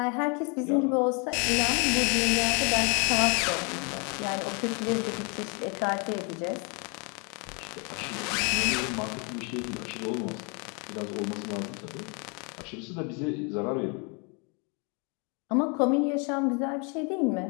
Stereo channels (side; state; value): right; quieter; 34.3 dB